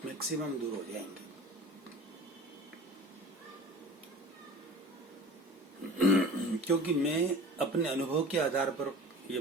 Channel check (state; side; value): normal; both; correlation 0.40